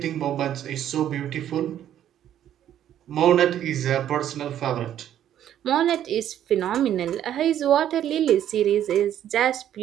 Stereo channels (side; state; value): left; quieter; 10.9 dB